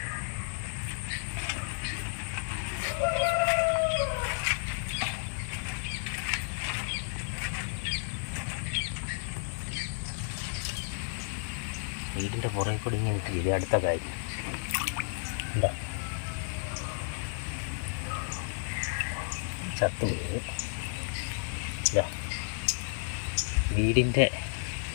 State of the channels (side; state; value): right; silent; 56 dB below the other